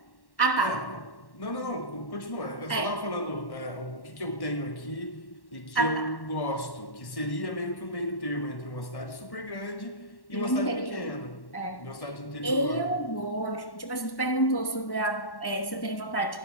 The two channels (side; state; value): right; late; 1.1 ms